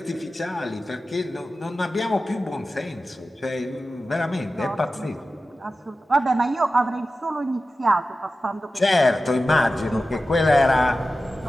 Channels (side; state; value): both; normal; correlation 0.94